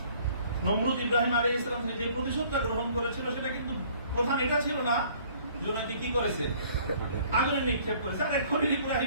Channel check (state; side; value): inverted; both; correlation -0.56